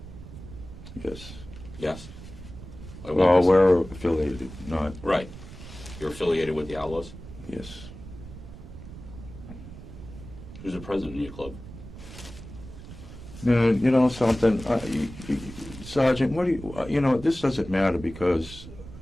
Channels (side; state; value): right; noise; rumble, 14 dB below the sound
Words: Yes. Yes. Well, we're affiliated, not... Right. You're affiliated with the Outlaws? Yes. Who's the president of your club? You know something, Sergeant, what do you, this doesn't matter because,